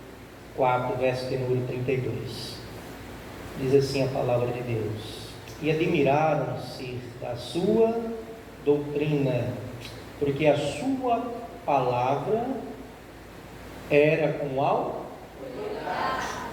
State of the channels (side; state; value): both; identical; correlation 1.00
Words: 4, verso de número 32. Diz assim a palavra de Deus: e admiraram-se da sua doutrina, porque a sua palavra era com autoridade.